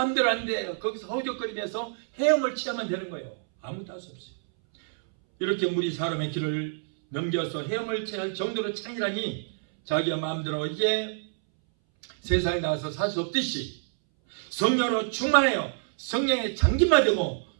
안 돼요. 거기서 허우적거리면서 헤엄을 치야만 되는 거예요. 아무것도 할 수 없어요. 이렇게 물이 사람의 길을 넘겨서 헤엄을 쳐야 할 정도로 창이라니 자기가 마음대로 이제 세상에 나와서 살 수 없듯이 성령으로 충만해요. 성령의 장기만 되고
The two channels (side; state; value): left; silent; 60 dB below the other